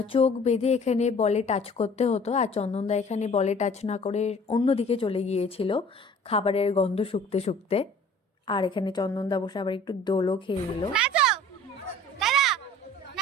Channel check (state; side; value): normal; both; correlation 0.49